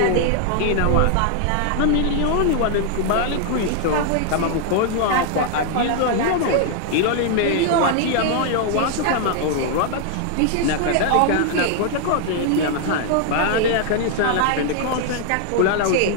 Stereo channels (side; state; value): both; different; correlation 0.00